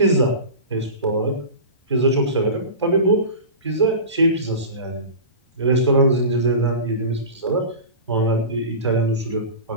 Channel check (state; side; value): inverted; both; correlation -0.31